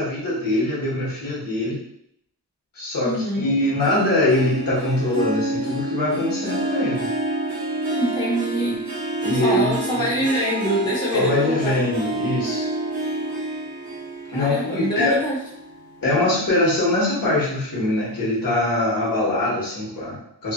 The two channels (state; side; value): normal; both; correlation 0.19